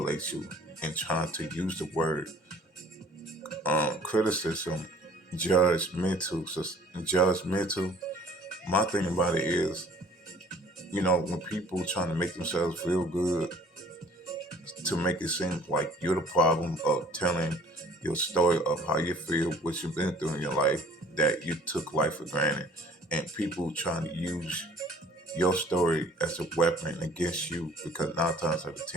you and trying to use the word criticism, judgmental, my thing about it is, when people trying to make themselves feel good, to make it seem like you're the problem of telling your story of how you feel, what you've been through in your life, that you took life for granted, and people trying to use your story as a weapon against you, because 9 times out of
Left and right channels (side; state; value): both; normal; correlation 0.53